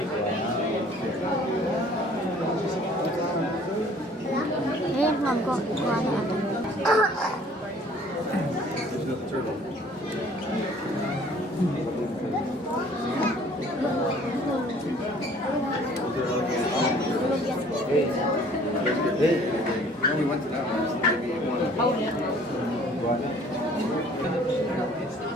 Ayan, ma'am ko. Kuha na ako. There's another turtle. We went to that one. Maybe one.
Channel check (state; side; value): normal; both; correlation 0.54